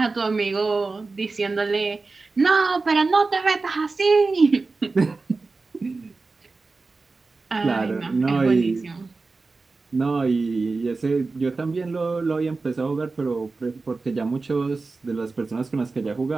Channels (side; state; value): left; quieter; 3.9 dB